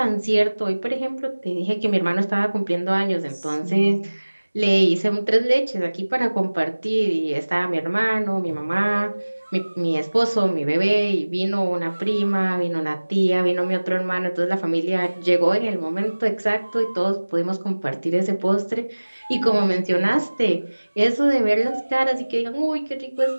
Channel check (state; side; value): inverted; both; correlation -1.00